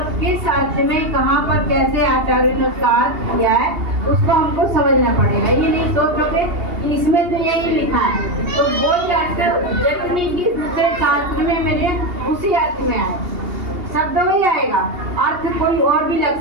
किस अर्थ में कहाँ पर कैसे आचार्य ने उसका अर्थ किया है उसको हमको समझना पड़ेगा। ये नहीं सोचोगे कि इसमें तो यही लिखा है, तो बोल के जरूर नहीं कि दूसरे शास्त्र में मेरे उसी अर्थ में आए, शब्द में ही आएगा, अर्थ कोई और भी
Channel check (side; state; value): left; late; 2.8 ms